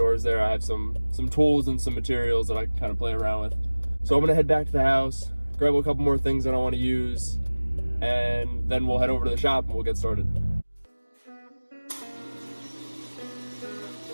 there. I have some tools and some materials that I can kind of play around with. So I'm gonna head back to the house, grab a couple more things that I want to use, and then we'll head over to the shop and we'll get started.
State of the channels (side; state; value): both; inverted; correlation -1.00